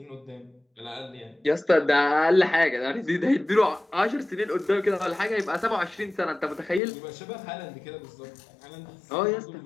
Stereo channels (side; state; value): right; drops out; at 6.8 s